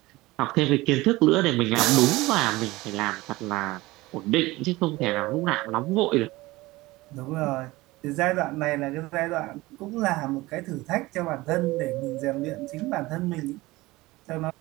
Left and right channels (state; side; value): quieter; left; 20.0 dB